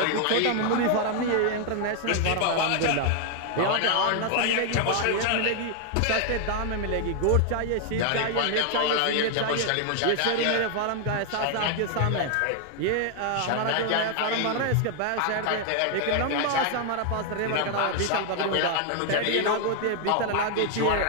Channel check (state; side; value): different; both; correlation 0.00